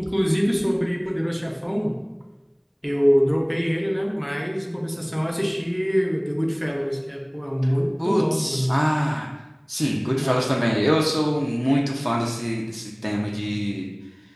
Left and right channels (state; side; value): identical; both; correlation 1.00